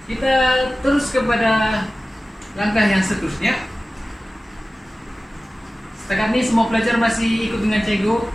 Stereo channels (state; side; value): normal; both; correlation 0.96